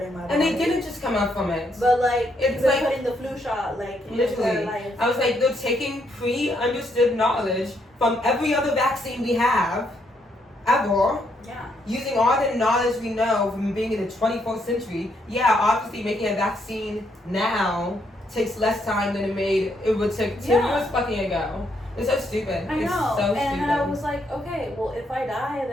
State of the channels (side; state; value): both; normal; correlation 0.75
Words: in my body. And they didn't just come up from it. But like, it's like like putting the flu shot, like literally. I was like, they're taking pre-understood knowledge from every other vaccine we have, ever. Yeah. Using all the knowledge we know from being in the 21st century. Yeah, obviously making a vaccine now takes less time than it would take 10 years fucking ago. It's so stupid. I know. It's so and stupid. then I was like, okay, well, if I die,